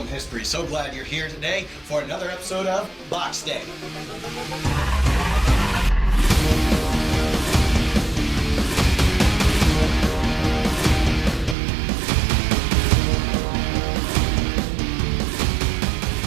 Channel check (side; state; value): left; drops out; at 11.6 s